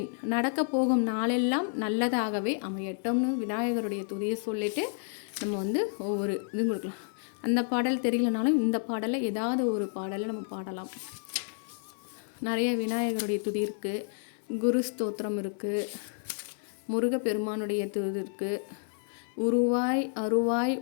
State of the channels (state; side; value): silent; right; 58 dB below the other